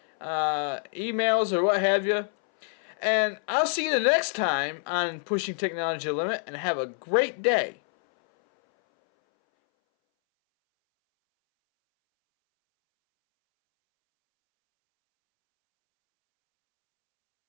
emails or what have you. And I'll see you the next time on Pushing Technology to the Limit, and have a great day.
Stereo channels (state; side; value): silent; right; 61 dB below the other